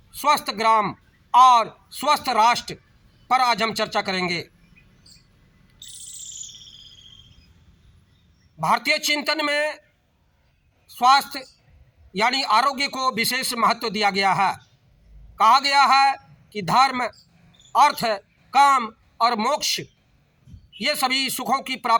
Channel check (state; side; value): identical; both; correlation 1.00